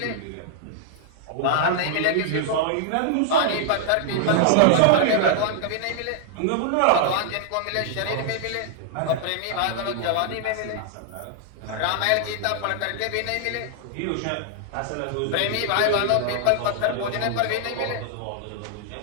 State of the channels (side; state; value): both; different; correlation -0.01